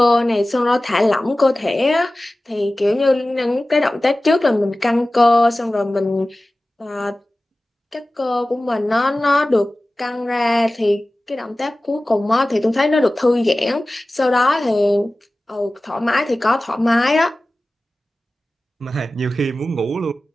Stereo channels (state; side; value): normal; both; correlation 0.97